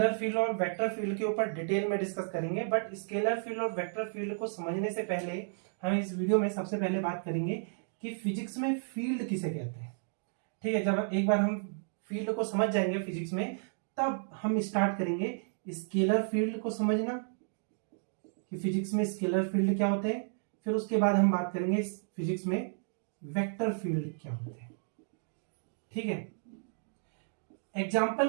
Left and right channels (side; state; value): left; silent; digital silence